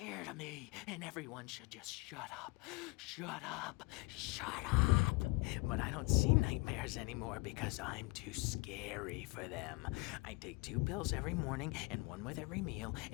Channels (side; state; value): right; quieter; 24.0 dB